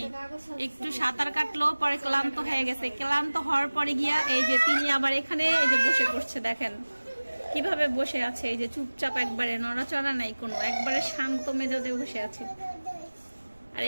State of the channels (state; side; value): inverted; both; correlation -1.00